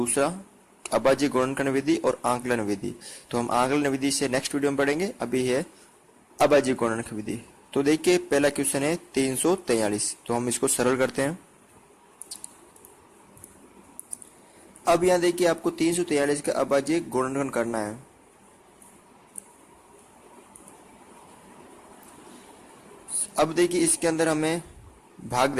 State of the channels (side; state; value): both; identical; correlation 1.00